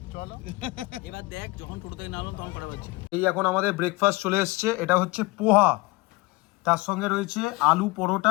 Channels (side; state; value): right; quieter; 23.0 dB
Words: এবার দেখ যখন টোটো থেকে নামলাম তখন করা পাচ্ছি। এই এখন আমাদের ব্রেকফাস্ট চলে এসছে। এটা হচ্ছে পোহা, তার সঙ্গে রয়েছে আলু